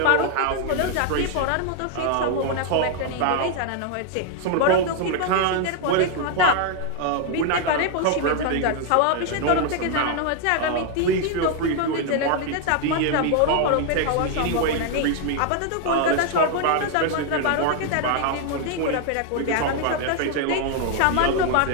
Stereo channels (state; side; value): different; both; correlation 0.00